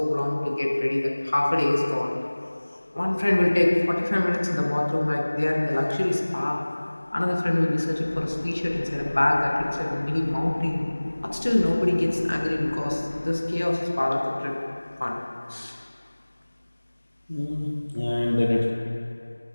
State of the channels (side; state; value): both; inverted; correlation -1.00